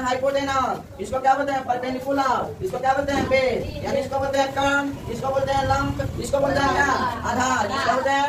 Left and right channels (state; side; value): identical; both; correlation 1.00